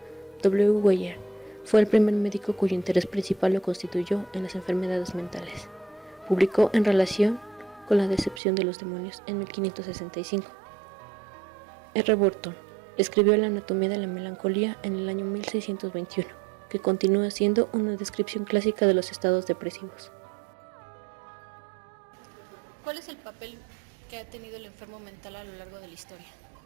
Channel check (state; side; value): drops out; left; at 8.4 s